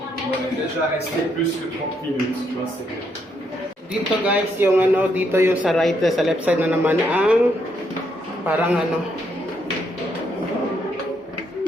On est déjà resté plus que 30 minutes, tu vois, c'est bien. Dito guys, yung ano, dito yung sa right, sa left side na naman ang parang ano.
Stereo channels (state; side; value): normal; both; correlation 0.75